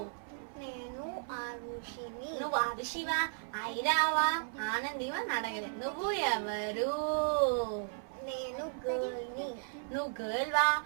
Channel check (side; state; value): left; silent; 54 dB below the other